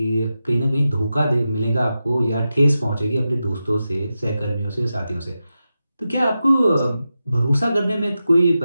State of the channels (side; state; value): both; inverted; correlation -0.91